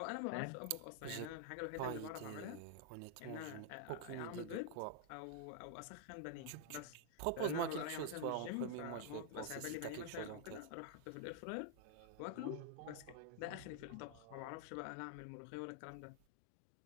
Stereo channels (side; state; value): both; different; correlation 0.00